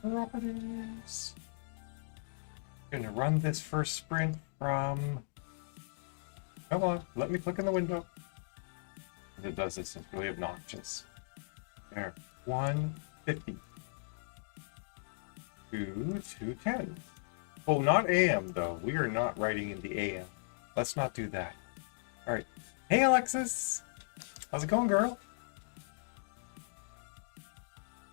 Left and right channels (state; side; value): silent; right; digital silence